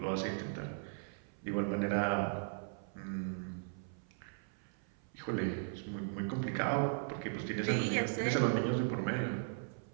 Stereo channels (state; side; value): silent; left; 53 dB below the other